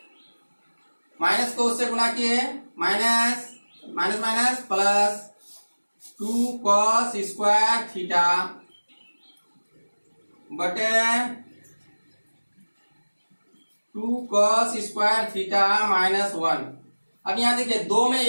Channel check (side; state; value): both; inverted; correlation -1.00